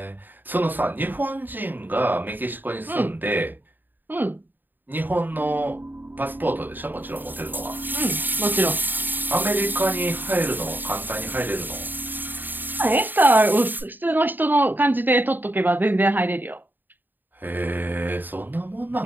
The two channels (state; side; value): late; left; 0.091 ms